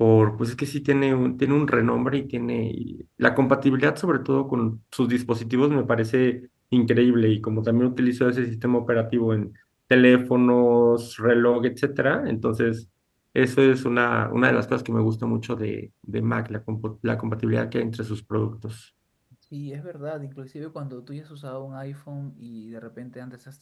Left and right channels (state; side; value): identical; both; correlation 1.00